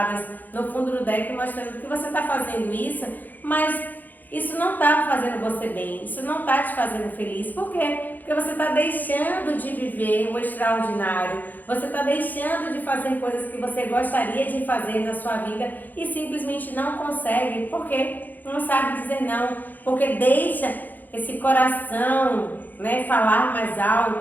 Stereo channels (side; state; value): right; late; 0.085 ms